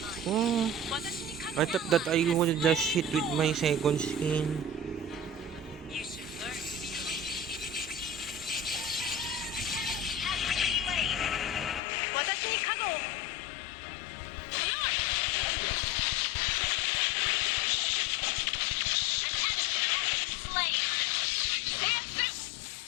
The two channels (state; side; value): drops out; right; at 11.8 s